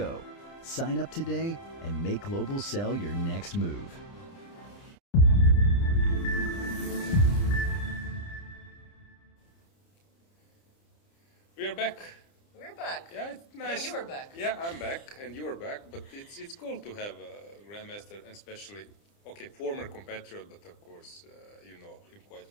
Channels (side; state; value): right; late; 30 ms